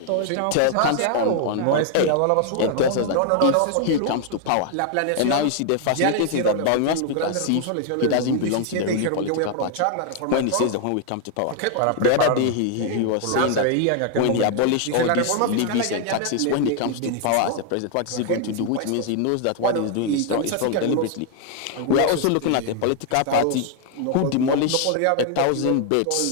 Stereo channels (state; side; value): different; both; correlation 0.00